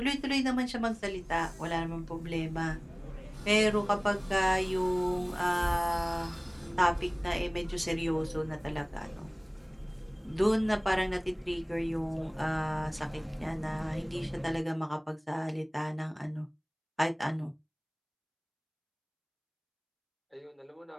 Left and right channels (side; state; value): both; identical; correlation 1.00